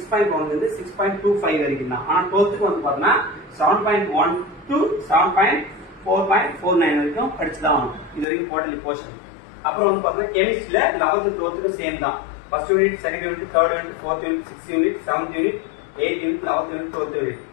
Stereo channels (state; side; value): drops out; right; at 8.2 s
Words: இருந்து 6.25 வரைக்கும் தான். ஆனா 12th வந்து பாத்தீங்கன்னா 7.1 to 7.4.49 வரைக்கும் படிச்சுதான் ஆகும். இது வரைக்கும் குவார்டர்லி போர்ஷன். அப்புறம் வந்து பாத்தீங்கன்னா கெமிஸ்ட்ரியில 11th 12th சேம் தான். First unit, second unit, third unit, fourth unit, sixth unit, seventh unit, 8th unit, 11th unit, 12th unit.